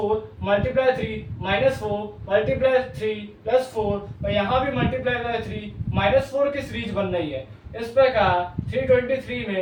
multiply 3 minus 4 multiply 3 plus 4 और यहाँ भी मल्टीप्लाई बाय 3 माइनस 4 की सीरीज बन रही है। इस प्रकार 323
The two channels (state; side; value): identical; both; correlation 1.00